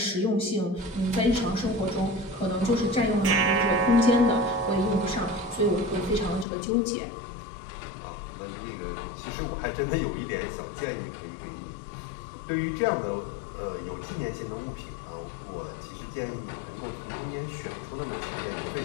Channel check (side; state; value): right; drops out; at 6.5 s